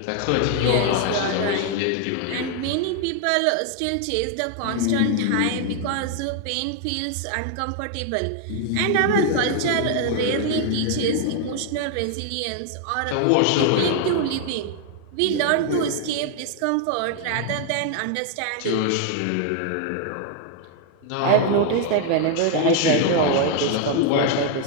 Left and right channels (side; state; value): both; different; correlation 0.00